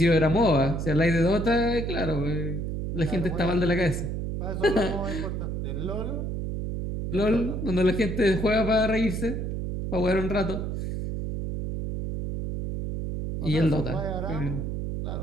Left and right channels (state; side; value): noise; right; hum, 3 dB below the sound